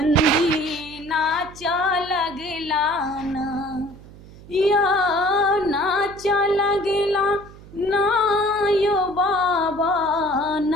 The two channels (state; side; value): noise; right; hum, 20 dB below the sound